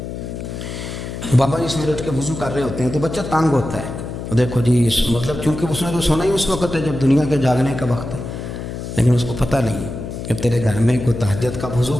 بابا جی سویرے اٹھ کے وضو کر رہے ہوتے ہیں تو بچہ تانگ ہوتا ہے، دیکھو جی مطلب چونکہ اس نے تو سونا ہی اس وقت ہے جب دنیا کے جاگنے کا وقت ہے، لیکن اس کو پتہ نہیں کہ تیرے گھر میں کوئی تہجد کا وضو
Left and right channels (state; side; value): noise; left; hum, 7 dB below the sound